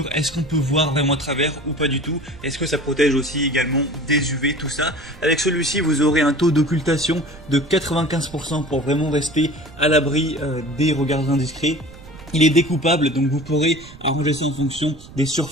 est-ce qu'on peut voir vraiment à travers ou pas du tout. Est-ce que ça protège aussi également des UV, tout ça. Avec celui-ci, vous aurez un taux d'occultation de 95% pour vraiment rester à l'abri des regards indiscrets. Il est découpable, donc vous pourrez arranger ça en fonction des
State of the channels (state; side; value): noise; right; rumble, 19 dB below the sound